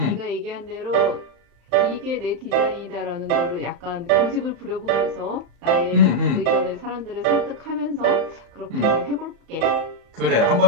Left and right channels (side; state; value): left; late; 35 ms